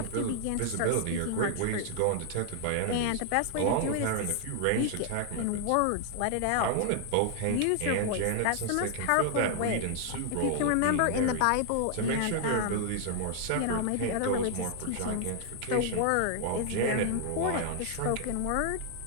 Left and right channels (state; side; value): different; both; correlation 0.00